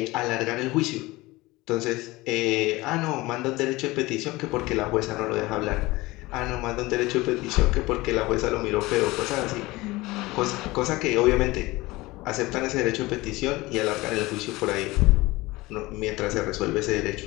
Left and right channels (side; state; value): right; quieter; 20.6 dB